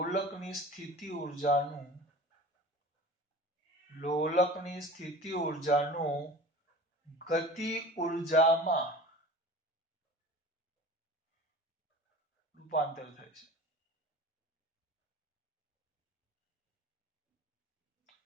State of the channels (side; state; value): both; normal; correlation 0.39